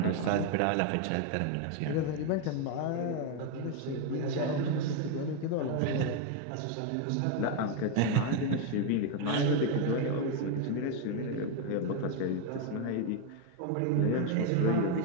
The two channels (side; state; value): both; different; correlation 0.01